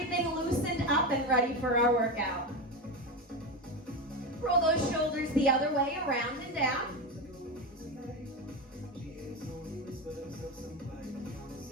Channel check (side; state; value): both; normal; correlation 0.17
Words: loosened up and ready for our workout. Roll those shoulders the other way, around and down.